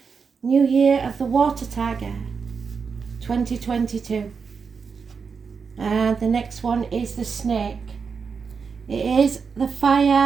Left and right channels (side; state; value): left; quieter; 5.6 dB